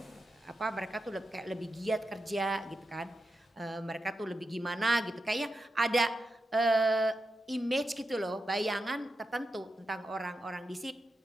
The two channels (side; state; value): both; normal; correlation 0.88